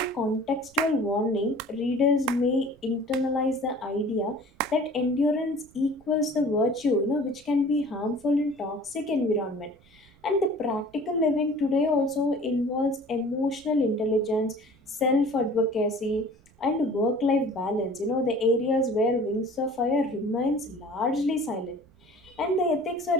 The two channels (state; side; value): noise; right; rumble, 28 dB below the sound